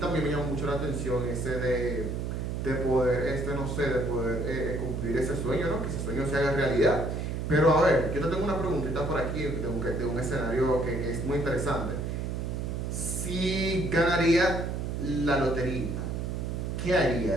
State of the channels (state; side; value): noise; right; hum, 2 dB below the sound